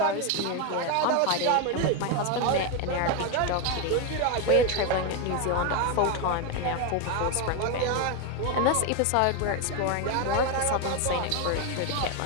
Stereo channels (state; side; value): different; both; correlation 0.02